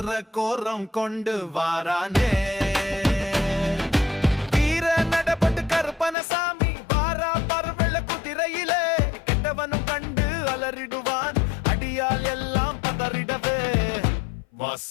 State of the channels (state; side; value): drops out; right; at 6.2 s